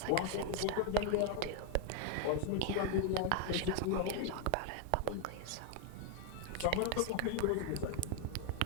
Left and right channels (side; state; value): both; different; correlation 0.01